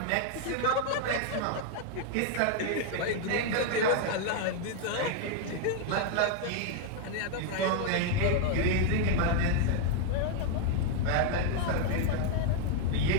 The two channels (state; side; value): different; both; correlation 0.00